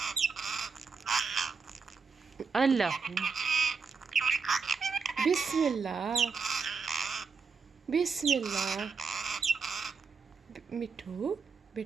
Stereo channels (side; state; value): left; quieter; 5.2 dB